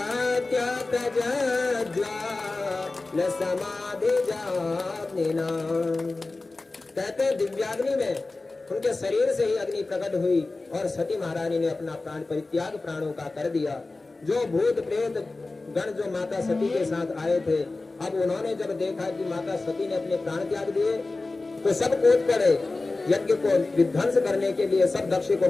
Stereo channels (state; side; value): quieter; right; 3.4 dB